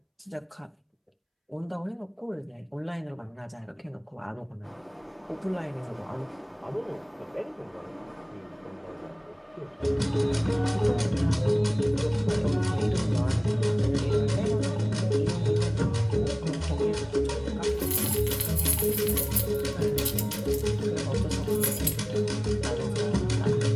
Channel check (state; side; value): identical; both; correlation 1.00